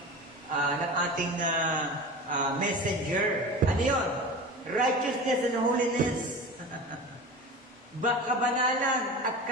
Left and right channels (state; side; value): normal; both; correlation 0.32